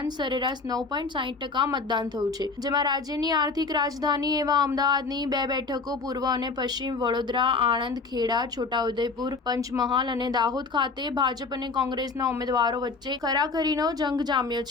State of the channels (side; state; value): right; quieter; 4.3 dB